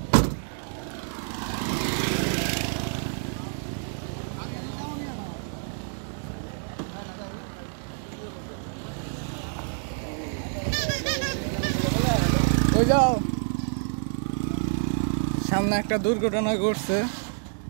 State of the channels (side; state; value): left; silent; 60 dB below the other